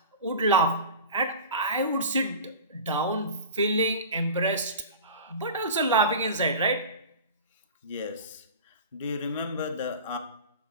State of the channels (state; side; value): inverted; both; correlation -0.33